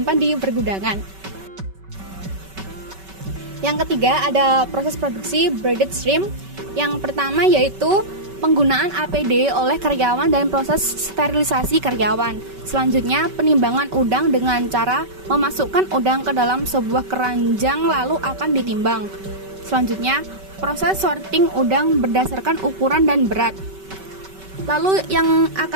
di pergudangan. Yang ketiga ada proses produksi braided shrimp. Yang pertama yaitu penggunaan APD oleh karyawan dan proses sterilisasi karyawan. Selanjutnya penimbangan udang dengan cara memasukkan udang ke dalam sebuah keranjang lalu akan ditimbang. Selanjutnya proses sorting udang berdasarkan ukuran dan berat. Lalu yang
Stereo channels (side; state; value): left; late; 5.2 ms